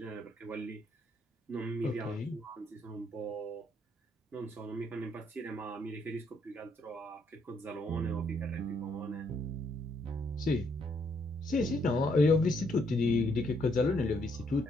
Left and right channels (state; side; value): normal; both; correlation 0.72